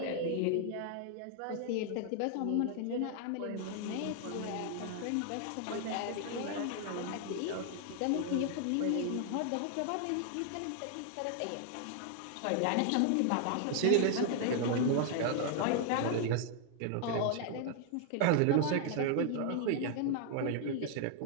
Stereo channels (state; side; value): different; both; correlation 0.00